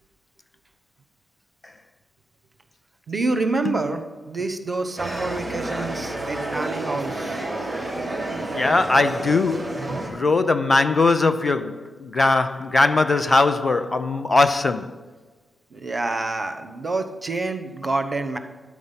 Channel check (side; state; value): both; normal; correlation 0.88